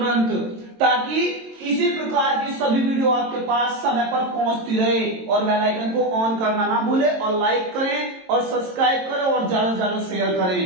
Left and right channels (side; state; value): left; late; 22 ms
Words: ताकि इसी प्रकार की सभी वीडियो आपके पास समय पर पहुंचती रहे। और बेल आइकन को ऑन करना ना भूले, और लाइक करें और सब्सक्राइब करें और ज्यादा से ज्यादा शेयर